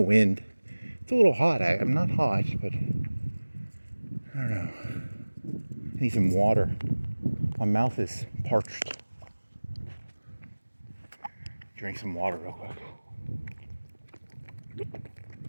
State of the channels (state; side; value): inverted; both; correlation -1.00